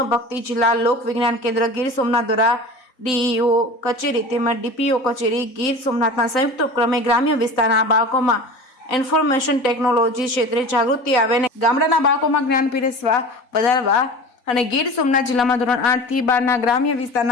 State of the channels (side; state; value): right; late; 3.9 ms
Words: જિલ્લા લોક વિજ્ઞાન કેન્દ્ર ગીર સોમનાથ દ્વારા ડીઈઓ કચેરી તેમજ ડીપીઓ કચેરી ગીર સોમનાથના સંયુક્ત ઉપક્રમે ગ્રામ્ય વિસ્તારના બાળકોમાં ઇન્ફોર્મેશન ટેકનોલોજી ક્ષેત્રે જાગૃતિ આવે અને ગામડાના બાળકોમાં જ્ઞાન પીરસવા વધારવા અને ગીર સોમનાથ જિલ્લામાં ધોરણ 8 થી 12ના ગ્રામ્ય